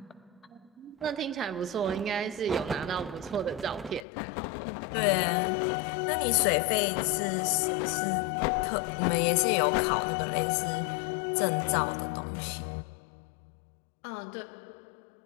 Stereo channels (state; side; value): drops out; right; at 4.0 s